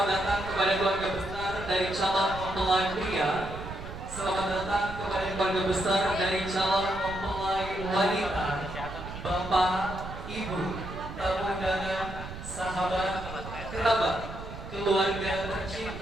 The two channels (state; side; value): noise; right; rumble, 11 dB below the sound